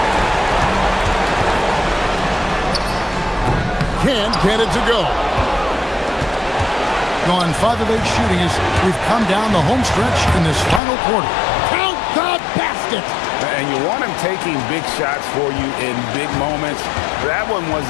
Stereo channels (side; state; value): right; drops out; at 10.8 s